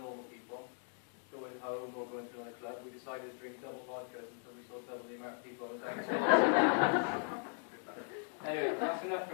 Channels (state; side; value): silent; right; 52 dB below the other